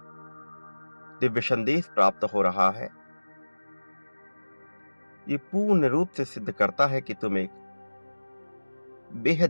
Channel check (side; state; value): both; inverted; correlation -1.00